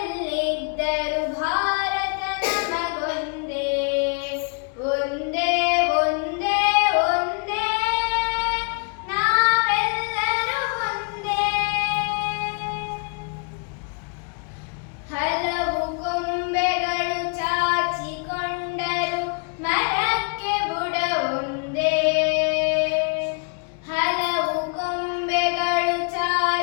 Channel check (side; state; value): right; quieter; 36.6 dB